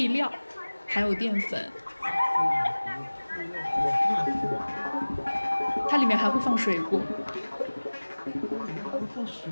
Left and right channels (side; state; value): both; inverted; correlation -1.00